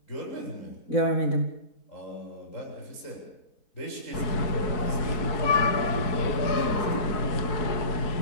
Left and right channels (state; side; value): late; right; 4.6 ms